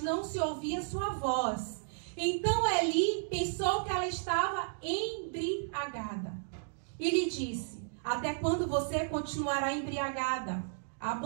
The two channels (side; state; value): left; silent; digital silence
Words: não se ouvia sua voz. Então Eli pensou que ela estava embriagada. E lhe disse: até quando você continuará embriagada?